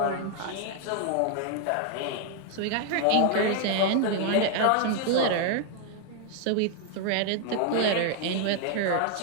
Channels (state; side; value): different; both; correlation 0.00